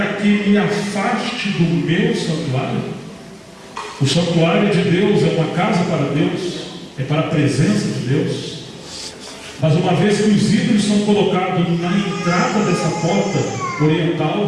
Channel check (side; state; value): both; identical; correlation 1.00